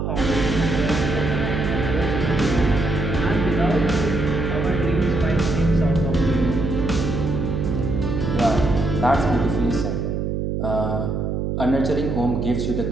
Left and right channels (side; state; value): right; noise; hum, 1 dB below the sound